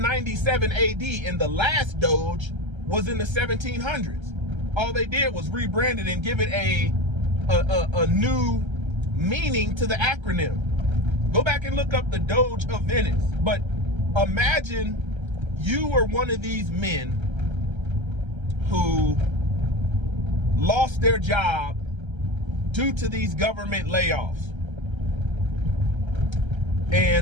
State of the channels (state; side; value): late; left; 1.3 ms